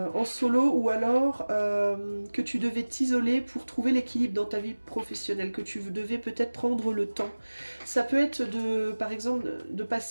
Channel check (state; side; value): inverted; both; correlation -1.00